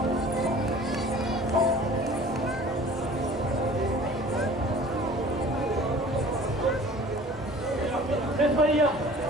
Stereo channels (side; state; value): right; noise; rumble, 18 dB below the sound